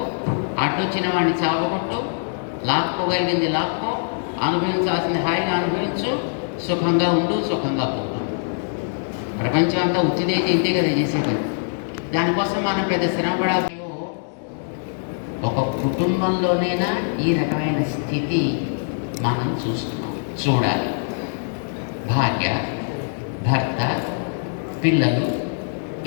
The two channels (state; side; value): silent; right; digital silence